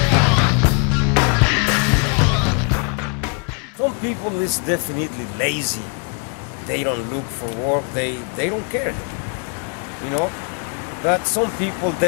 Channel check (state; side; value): quieter; right; 38.5 dB